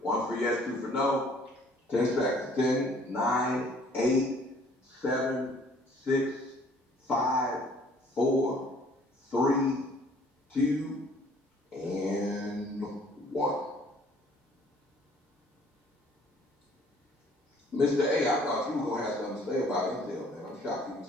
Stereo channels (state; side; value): normal; both; correlation 0.57